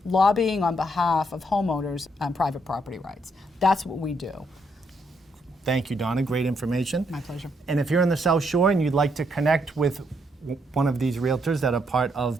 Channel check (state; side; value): normal; both; correlation 0.75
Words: lobbying on behalf of homeowners on private property rights. That's what we do. Thank you, Donna. Great information. My pleasure. And if you're in the South Shore and you'd like to connect with one of these realtors that are part